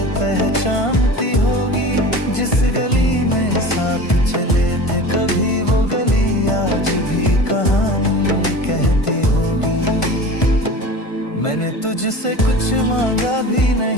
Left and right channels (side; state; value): right; late; 1.5 ms